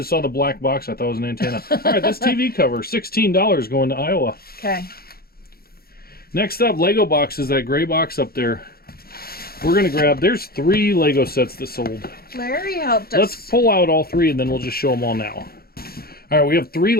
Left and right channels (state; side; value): late; right; 0.44 ms